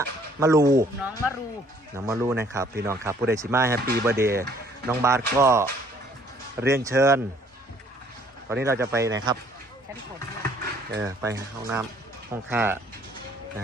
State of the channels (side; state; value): both; normal; correlation 0.61